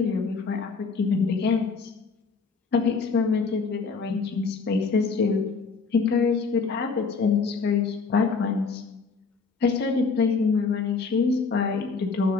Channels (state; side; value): quieter; right; 4.8 dB